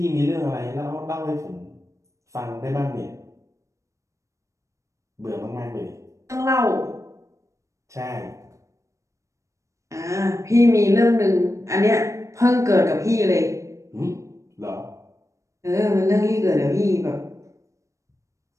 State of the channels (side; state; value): left; late; 0.15 ms